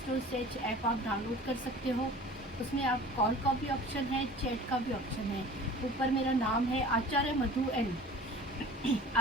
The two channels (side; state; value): both; normal; correlation 0.43